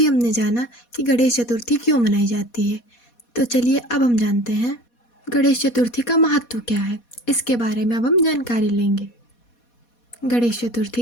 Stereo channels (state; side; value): late; right; 4.2 ms